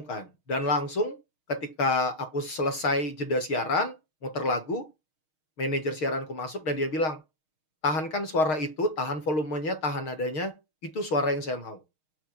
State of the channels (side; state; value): right; late; 6.4 ms